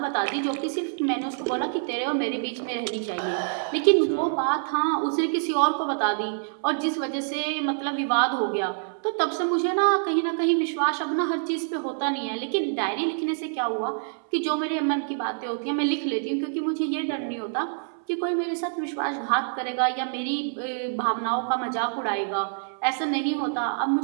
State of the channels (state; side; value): silent; left; 61 dB below the other